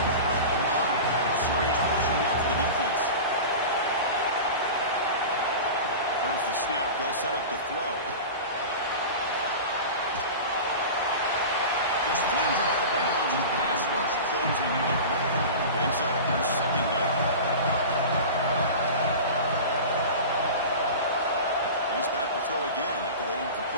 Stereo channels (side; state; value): both; inverted; correlation -0.32